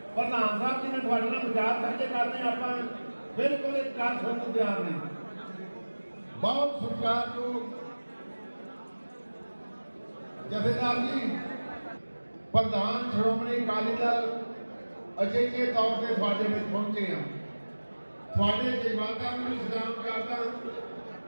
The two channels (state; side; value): inverted; both; correlation -1.00